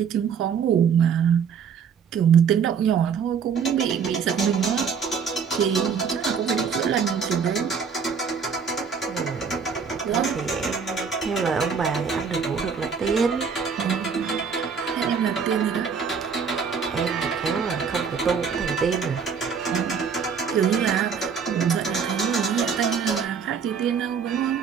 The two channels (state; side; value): quieter; left; 6.4 dB